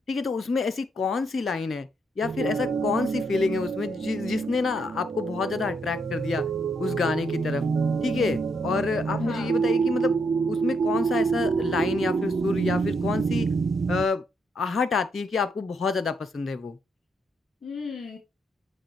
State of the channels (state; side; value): normal; both; correlation 0.76